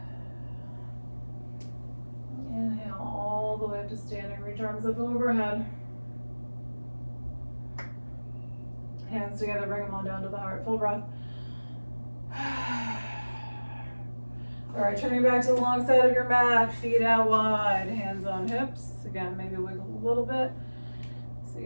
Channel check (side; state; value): both; inverted; correlation -1.00